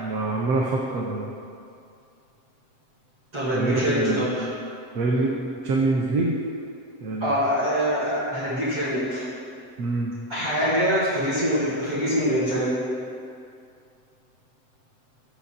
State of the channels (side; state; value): left; late; 7.7 ms